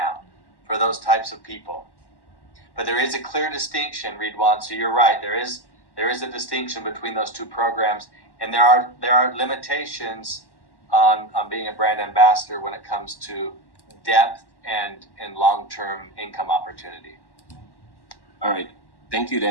for those types of people. But there is a clear distinction, Ridwan. So you're right. There is a distinction between those 2 programs, and there are limitations on being a brand ambassador when it comes to depth and long-term income opportunity. All right, thank you,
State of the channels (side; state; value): right; late; 1.1 ms